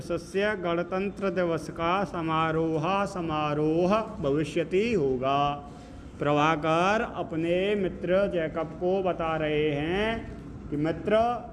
दिवस का समारोह भविष्यति होगा। प्रभाकर अपने मित्र जैकब को बता रहे हैं कि मित्र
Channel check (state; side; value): identical; both; correlation 1.00